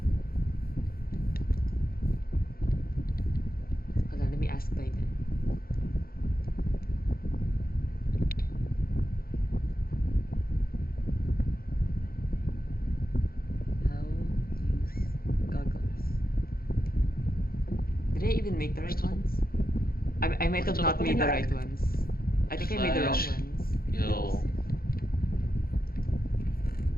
Hold on, let me ask Titan. How use goggles? Did I even make the right ones? I might have not made the right ones. I think I made the wrong Flash. ones. Yo,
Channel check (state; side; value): late; right; 0.43 ms